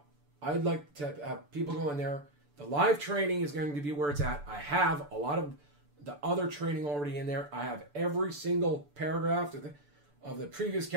I'd like to have people go in there. The live training is going to be where it's at. I have a lot of the other training already in there. I have every single paragraph of the previous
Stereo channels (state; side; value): late; left; 6.9 ms